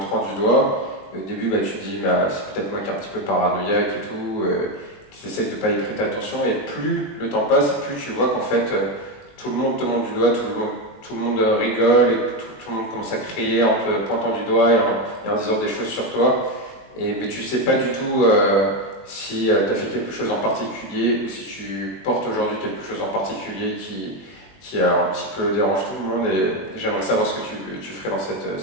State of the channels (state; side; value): late; right; 21 ms